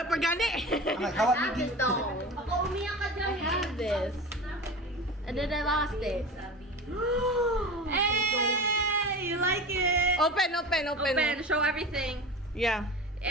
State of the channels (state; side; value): normal; both; correlation 0.32